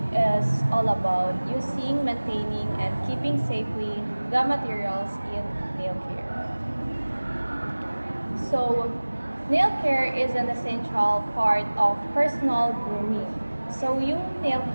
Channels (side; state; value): both; inverted; correlation -1.00